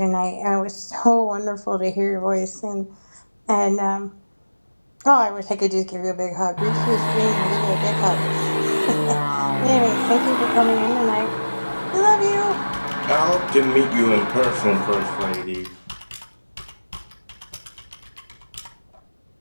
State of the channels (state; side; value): inverted; both; correlation -1.00